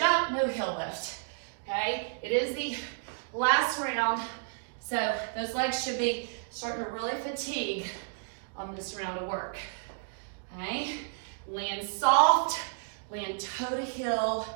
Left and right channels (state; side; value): silent; left; digital silence